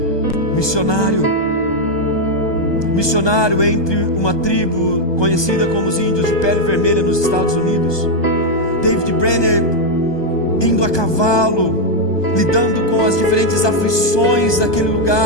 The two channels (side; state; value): right; late; 1.2 ms